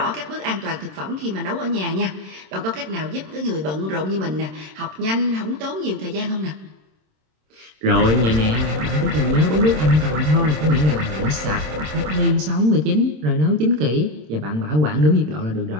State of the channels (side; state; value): left; late; 26 ms